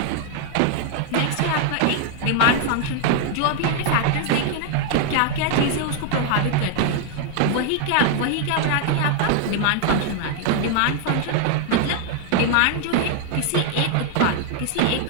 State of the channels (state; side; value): different; both; correlation 0.00